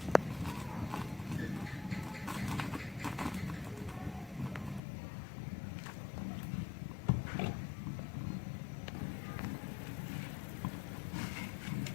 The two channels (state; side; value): drops out; right; at 4.8 s